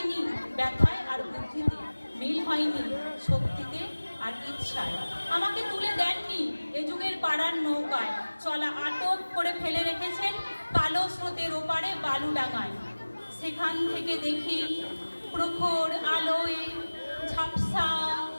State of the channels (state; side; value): inverted; both; correlation -1.00